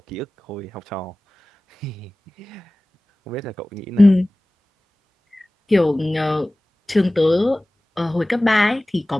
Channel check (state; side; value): normal; both; correlation 0.98